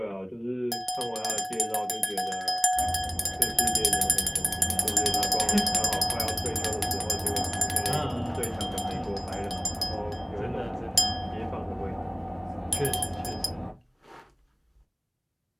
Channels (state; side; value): identical; both; correlation 1.00